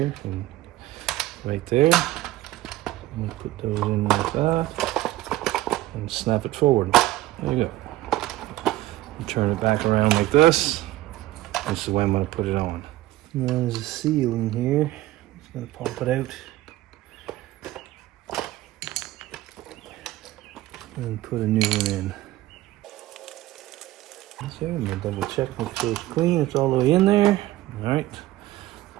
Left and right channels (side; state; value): left; quieter; 16.2 dB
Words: and right there. I'm going to put those in like that and snap it forward. There you go. And turn it back around like this. This is the way I'm going to put it on. Now there's a seal in here. I'm just going to pop it out. And put a new one in. So I'm going to double check, make sure it's clean. It's all the way in there. Alright.